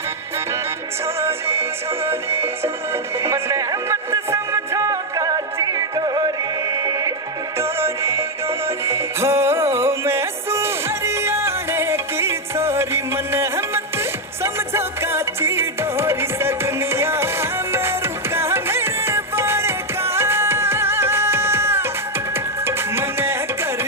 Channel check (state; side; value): normal; both; correlation 0.01